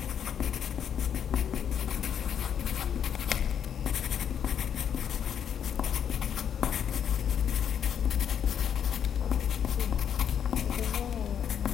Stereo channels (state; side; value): quieter; right; 8.6 dB